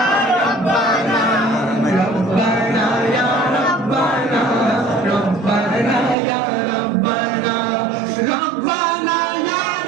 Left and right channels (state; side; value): drops out; left; at 6.2 s